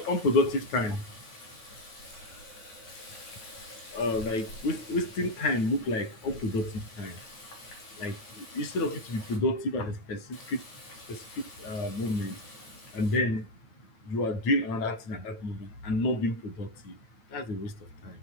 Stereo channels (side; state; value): right; late; 9.1 ms